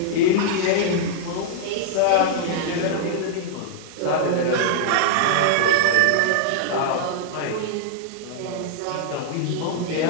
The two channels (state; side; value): different; both; correlation -0.01